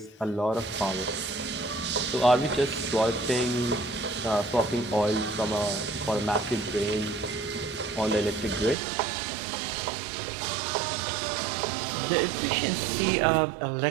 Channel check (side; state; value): left; drops out; at 8.8 s